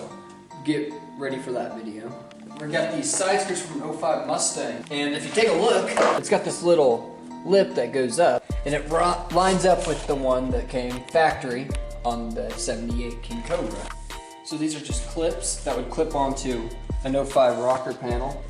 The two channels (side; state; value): both; identical; correlation 1.00